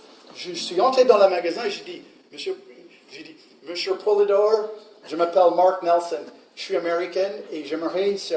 Je suis entré dans le magasin et j'ai dit, Monsieur Poulidor, je m'appelle Mark Nelson, je suis américaine et j'aimerais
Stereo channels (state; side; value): identical; both; correlation 1.00